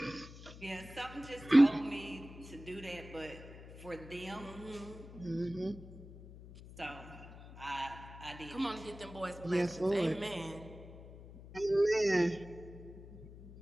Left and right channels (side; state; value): left; noise; hum, 16 dB below the sound